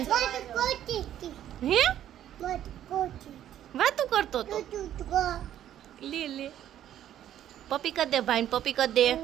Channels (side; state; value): left; quieter; 11.3 dB